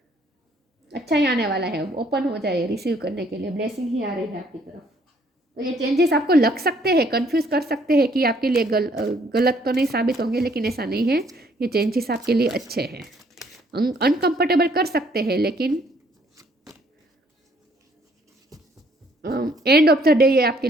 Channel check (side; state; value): both; normal; correlation 0.64